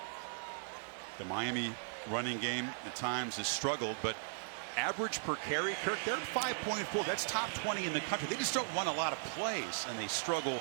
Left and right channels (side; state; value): left; silent; digital silence